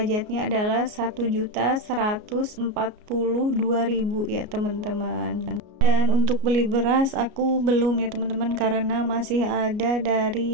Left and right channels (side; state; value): left; late; 33 ms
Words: adalah 1.142.000 ya teman-teman. Dan untuk beli beras aku belum ya teman-teman, karena masih ada dari